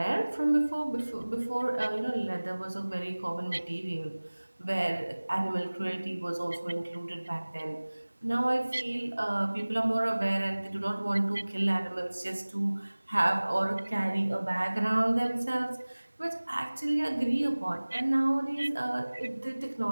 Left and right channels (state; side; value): inverted; both; correlation -1.00